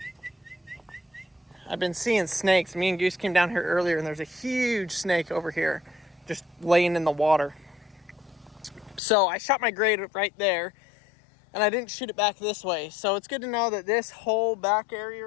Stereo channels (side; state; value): right; drops out; at 9.0 s